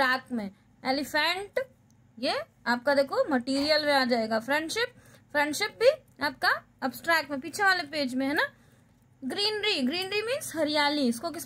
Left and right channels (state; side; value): identical; both; correlation 1.00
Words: में। एलिफेंट, ये आपका देखो मटेरियल में आ जाएगा। फ्रेंडशिप, फ्रेंडशिप भी आपका अब्स्ट्रैक्ट में, पीछे वाले पेज में है ना। ग्रीनरी, ग्रीनरी मीन्स हरियाली, इसको